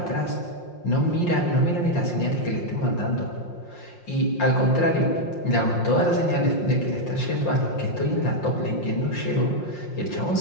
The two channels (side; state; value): right; late; 5.6 ms